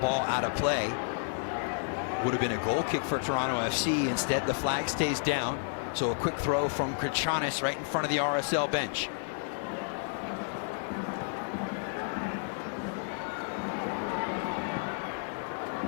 out of play. Would have been a goal kick for Toronto FC. Instead, the flag stays down. So a quick throw from Katranis right in front of the RSL bench.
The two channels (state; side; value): silent; right; 57 dB below the other